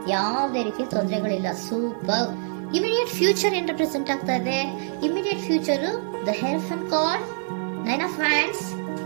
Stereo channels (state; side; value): silent; left; 62 dB below the other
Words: ಯಾವುದೇ ರೀತಿಯ ತೊಂದರೆಗಳಿಲ್ಲ. ಸೂಪರ್. ಇಮಿಡಿಯೇಟ್ ಫ್ಯೂಚರ್ ಏನ್ ರೆಪ್ರೆಸೆಂಟ್ ಆಗ್ತಾ ಇದೆ? Immediate future the hierophant card, 9 of wands